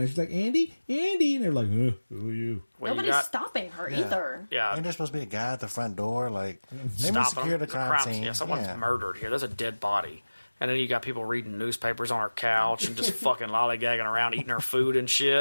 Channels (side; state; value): both; inverted; correlation -1.00